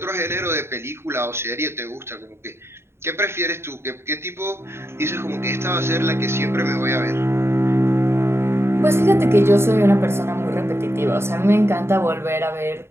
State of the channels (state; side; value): late; left; 0.12 ms